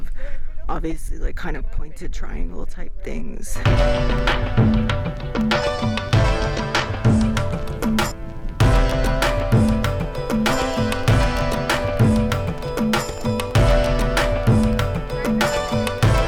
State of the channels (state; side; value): identical; both; correlation 1.00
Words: obviously like kind of pointed triangle type things.